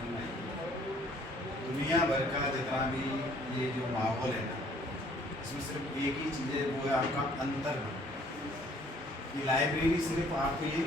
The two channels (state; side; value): normal; both; correlation 0.59